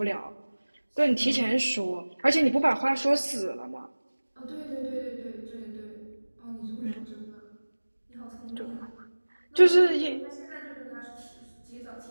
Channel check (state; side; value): inverted; both; correlation -1.00